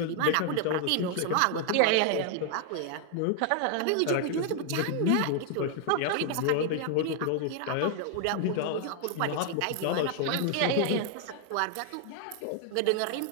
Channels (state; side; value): different; both; correlation 0.00